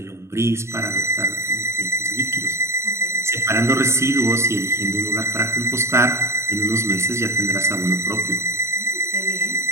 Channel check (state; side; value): late; left; 0.13 ms